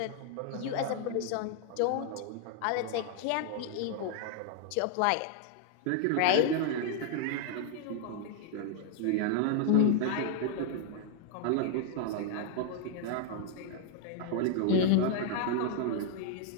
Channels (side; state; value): both; different; correlation 0.00